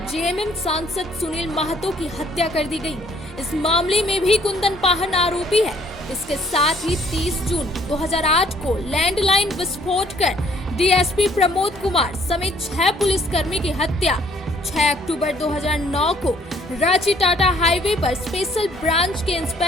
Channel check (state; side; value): normal; both; correlation 0.62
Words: जेएमएम सांसद सुनील महतो की हत्या कर दी गई। इस मामले में भी कुंदन पाहन आरोपी है। इसके साथ ही 30 जून 2008 को लैंडलाइन विस्फोट कर डीएसपी प्रमोद कुमार समेत 6 पुलिसकर्मी की हत्या। 6 अक्टूबर 2009 को रांची टाटा हाईवे पर स्पेशल ब्रांच के